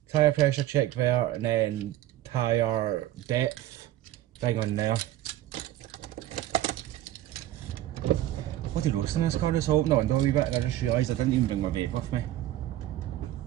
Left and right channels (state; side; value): quieter; left; 14.0 dB